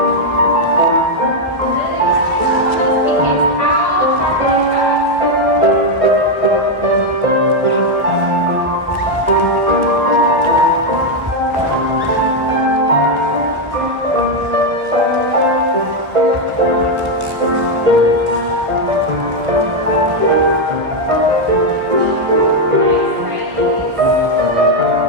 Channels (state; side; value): late; left; 1.2 ms